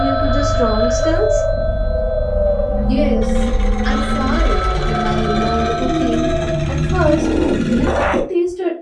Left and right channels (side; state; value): both; identical; correlation 1.00